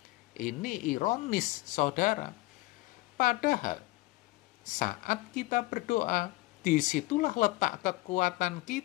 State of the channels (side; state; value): right; quieter; 20.6 dB